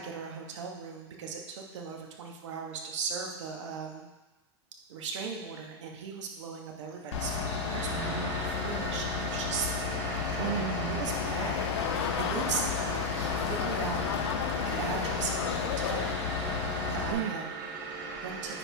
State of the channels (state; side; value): normal; both; correlation 0.02